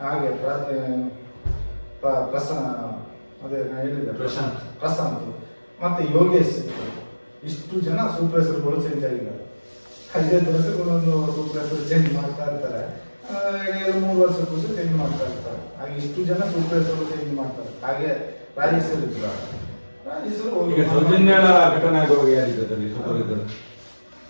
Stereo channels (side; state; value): both; inverted; correlation -1.00